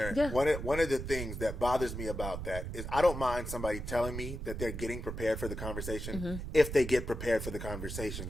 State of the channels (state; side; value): noise; right; rumble, 6 dB below the sound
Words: Yeah. One of the things that bothers me about that is I don't mind somebody telling me that they're getting prepared for the conversation if they get prepared for the